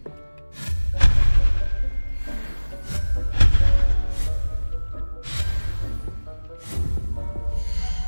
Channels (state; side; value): inverted; both; correlation -1.00